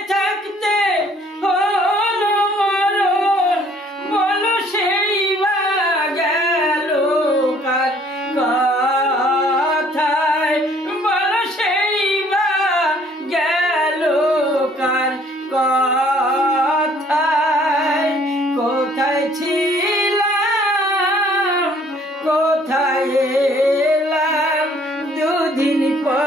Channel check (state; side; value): normal; both; correlation 0.59